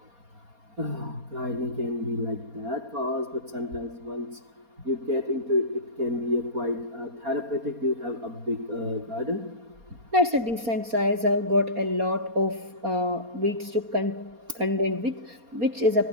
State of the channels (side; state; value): left; late; 4.2 ms